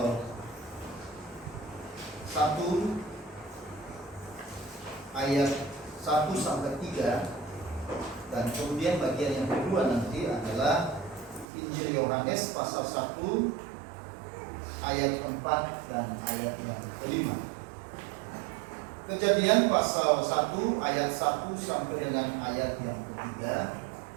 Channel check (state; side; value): drops out; left; at 11.5 s